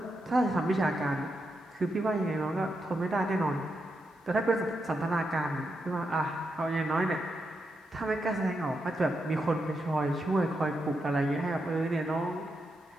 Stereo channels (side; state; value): both; normal; correlation 0.84